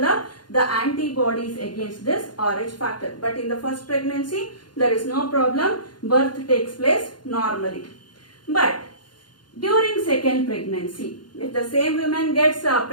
the antibodies against this RH factor. But in the first pregnancy, there is no problem. Birth takes place normally. But during second pregnancy, if the same woman gets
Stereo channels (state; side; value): late; right; 0.71 ms